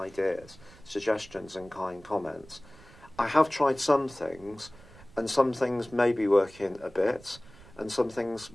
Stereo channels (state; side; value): noise; right; rumble, 22 dB below the sound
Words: suggestions and kind comments. I have tried some things, and some things may be working a bit, and some things